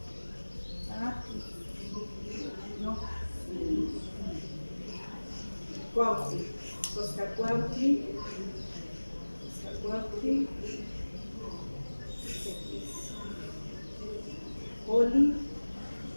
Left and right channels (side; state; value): both; inverted; correlation -1.00